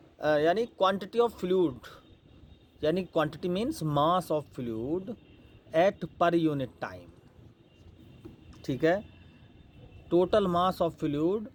यानी क्वांटिटी ऑफ फ्लूइड, यानी quantity means mass of fluid at per unit time. ठीक है, total mass of fluid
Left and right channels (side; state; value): both; identical; correlation 1.00